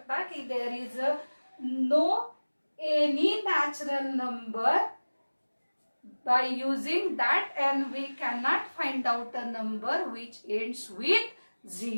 की there is no any natural number by using that n we cannot find out a number which ends with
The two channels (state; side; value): inverted; both; correlation -1.00